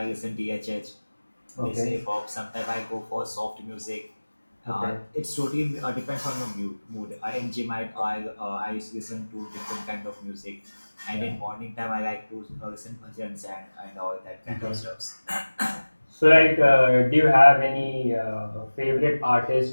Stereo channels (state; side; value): inverted; both; correlation -1.00